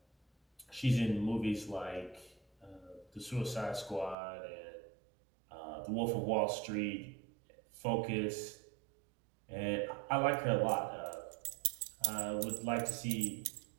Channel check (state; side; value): drops out; left; at 4.2 s